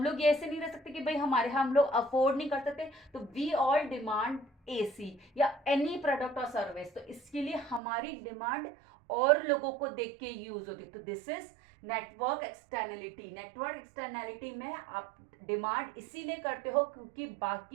लोग ये ऐसे नहीं रह सकते कि भाई हम लोग अफोर्ड नहीं कर सकते, तो वी ऑल डिमांड एसी या एनी प्रोडक्ट और सर्विस, तो इसके लिए हमारी डिमांड और लोगों को देख के यूज होती है। तो this is network externality. Network externality में आप डिमांड इसीलिए करते हो क्योंकि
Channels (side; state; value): left; drops out; at 7.8 s